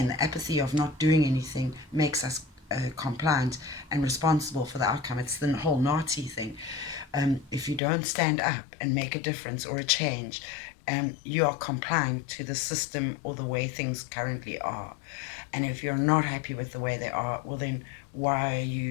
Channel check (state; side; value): drops out; right; at 7.8 s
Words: the apathy of not doing anything makes us compliant and responsible for the outcome. It's the whole Nazi thing. If you don't stand up and make a difference or a change, you are compliant to the system or the way things currently are. And if you're not happy with the way they are, well, then why are